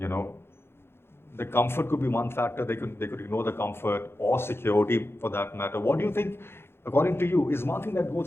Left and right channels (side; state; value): right; late; 0.11 ms